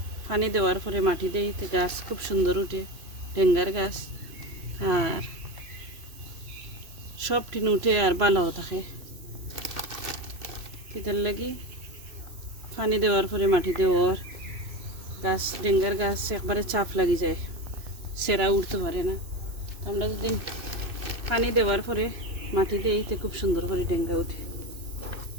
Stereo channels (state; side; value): late; left; 2.6 ms